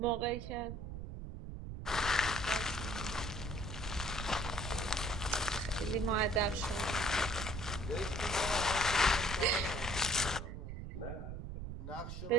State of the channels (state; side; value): noise; right; rumble, 7 dB below the sound